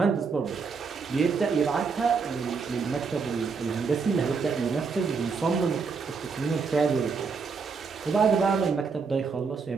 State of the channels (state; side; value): quieter; left; 5.1 dB